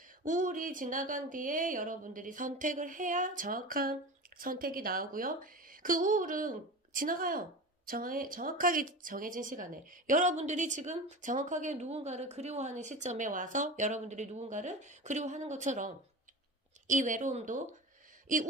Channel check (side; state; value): both; normal; correlation 0.30